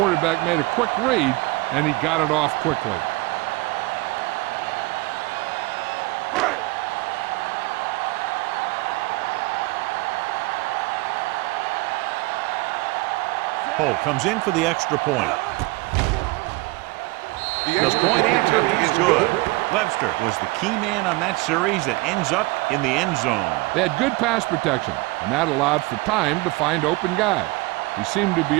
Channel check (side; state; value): left; quieter; 22.8 dB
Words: made a quick read, and he got it off quickly. Holt comes in for the extra point. The point after is good. Webster was the key man on that series that ends up in the end zone. They had good pass protection, and that allowed for time to find open guys. He seemed to be